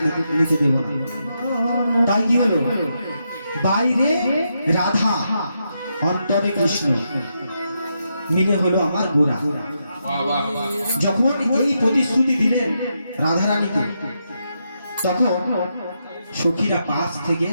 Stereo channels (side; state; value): both; inverted; correlation -0.83